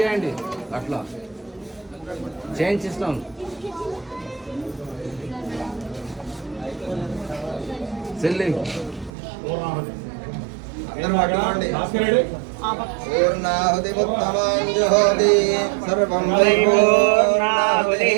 చేయండి, అట్లా చేయించిస్తాం. చెల్లి పూర్ణాహుతి ఉత్తమాంజుహోతి సర్వం వై పూర్ణాహుతి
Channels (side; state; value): left; drops out; at 9.1 s